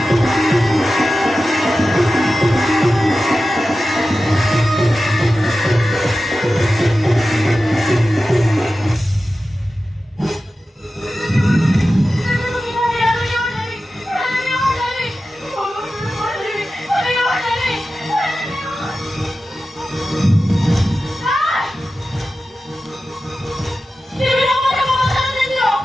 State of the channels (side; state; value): both; normal; correlation 0.93